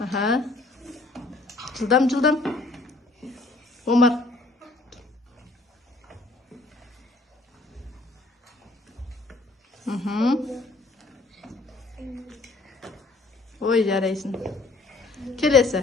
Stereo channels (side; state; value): right; quieter; 3.2 dB